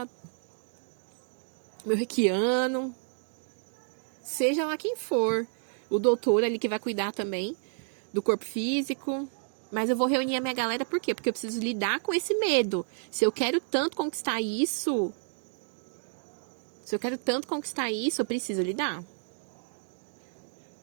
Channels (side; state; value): left; silent; 58 dB below the other